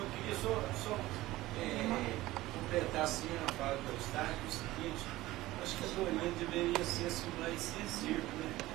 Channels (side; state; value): left; quieter; 17.4 dB